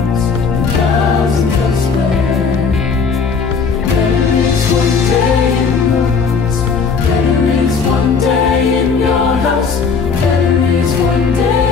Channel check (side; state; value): right; quieter; 5.4 dB